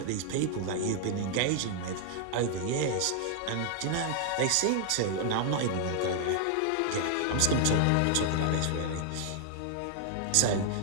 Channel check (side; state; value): both; different; correlation 0.00